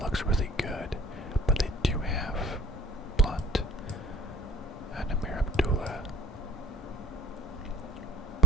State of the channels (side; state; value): both; normal; correlation 0.49